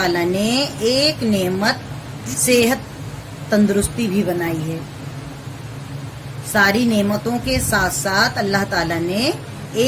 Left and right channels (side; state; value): both; identical; correlation 1.00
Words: ने एक नेमत सेहत तंदुरुस्ती भी बनाई है। सारी नेमतों के साथ साथ अल्लाह ताला ने